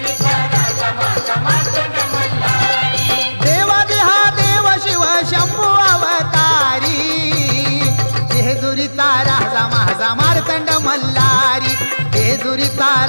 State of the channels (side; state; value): both; inverted; correlation -1.00